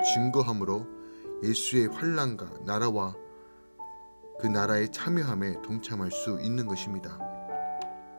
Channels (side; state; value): both; inverted; correlation -1.00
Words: 증거함으로 예수의 환난과 나라와 그 나라의 참여함에 동참할 수 있는 것입니다.